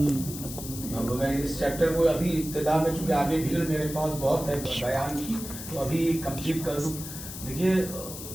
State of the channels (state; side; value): noise; left; hiss, 10 dB below the sound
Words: اب میں اس چیپٹر کو ابھی ابتدا میں چونکہ آگے بھیڑ میرے پاس بہت ہے بیان کی تو ابھی کمپلیٹ کر دوں. دیکھیے